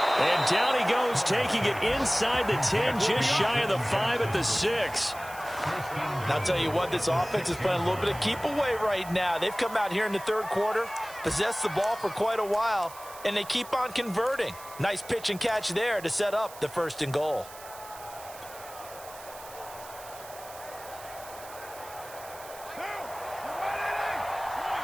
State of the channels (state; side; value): noise; right; hiss, 17 dB below the sound